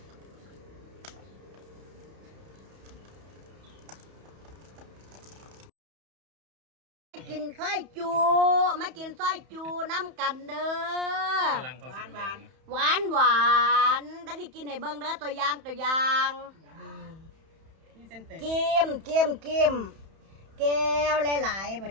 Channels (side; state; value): left; late; 31 ms